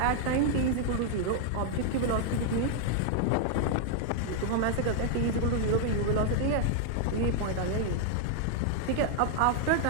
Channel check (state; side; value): different; both; correlation 0.00